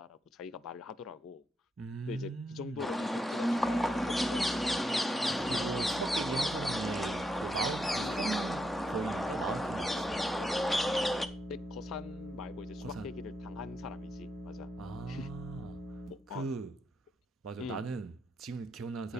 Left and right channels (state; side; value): normal; both; correlation 0.81